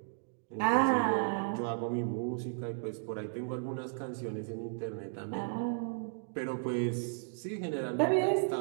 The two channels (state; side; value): silent; left; digital silence